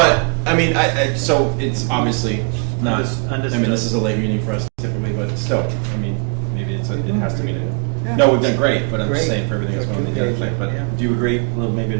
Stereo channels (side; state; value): left; quieter; 37.3 dB